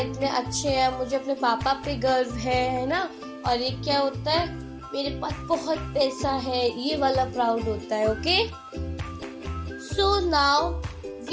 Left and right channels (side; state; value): both; identical; correlation 1.00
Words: अच्छे हैं, मुझे अपने पापा पे गर्व है ना। और ये क्या होता है, मेरे पास बहुत पैसा है, ये वाला प्राउड होता है। Okay, so now